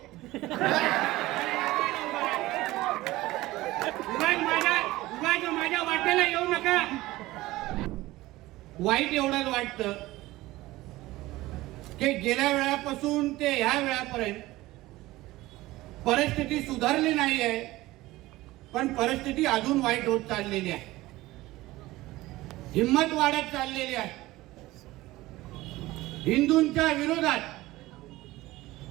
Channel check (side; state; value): left; quieter; 18.2 dB